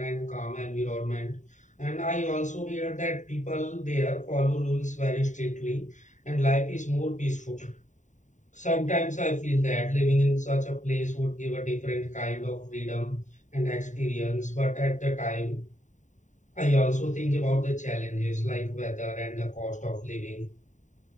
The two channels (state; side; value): late; right; 0.36 ms